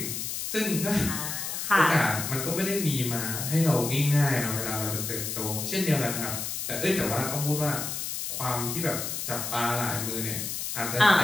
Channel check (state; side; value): noise; left; hiss, 4 dB below the sound